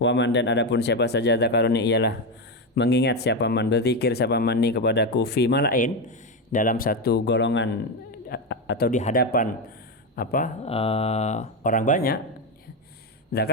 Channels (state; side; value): normal; both; correlation 0.11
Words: man, dan adapun siapa saja dzakarani ialah mengingat siapa man, berzikir siapa man ni kepadaku, fi malain, dalam satu golongan atau di hadapan orang banyak,